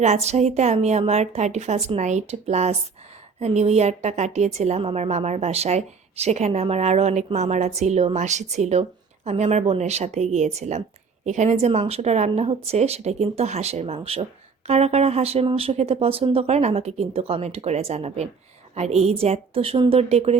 আমি আমার 31st নাইট প্লাস নিউ ইয়ারটা কাটিয়েছিলাম আমার মামার বাসায়। সেখানে আমার আরও অনেক মামারা ছিল, মাসি ছিল। আমি আমার বোনের সাথে গিয়েছিলাম। এখানে যে মাংসটা রান্না হচ্ছে সেটা কিন্তু হাঁসের মাংস। কারা কারা হাঁসের মাংস খেতে পছন্দ করেন আমাকে কিন্তু কমেন্ট করে জানাবেন। আর এই যে এত সুন্দর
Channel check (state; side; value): quieter; left; 5.2 dB